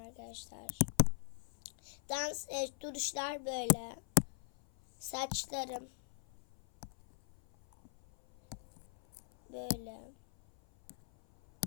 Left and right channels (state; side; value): silent; right; 51 dB below the other